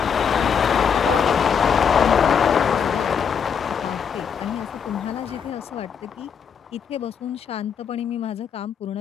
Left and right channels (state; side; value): quieter; right; 7.0 dB